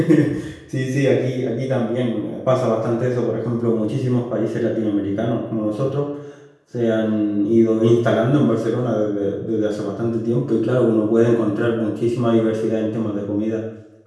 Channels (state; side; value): identical; both; correlation 1.00